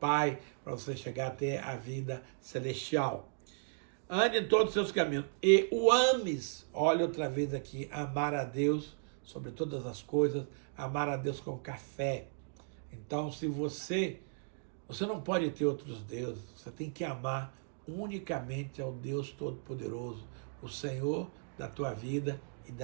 para você chegar até a vida celestial. Ande em todos os seus caminhos e o ames. Olha outra vez aqui, amar a Deus sobre todas as coisas, amar a Deus com café. Então, se você não pode ter outros deuses, você tem que amar unicamente ao Deus Todo-Poderoso, o Senhor da tua vida e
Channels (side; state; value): left; silent; digital silence